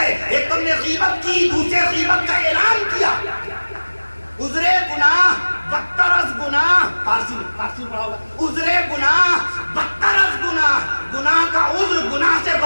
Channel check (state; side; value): inverted; both; correlation -1.00